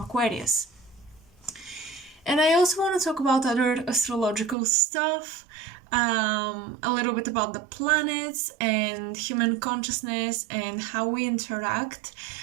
And I also want to talk about other astrological stuff, a little bit about the planets and human consciousness and how we interact.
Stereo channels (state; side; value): drops out; left; at 4.5 s